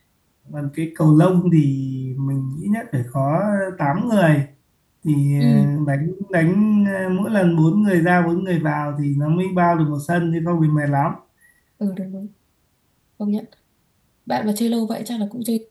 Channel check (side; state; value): both; identical; correlation 1.00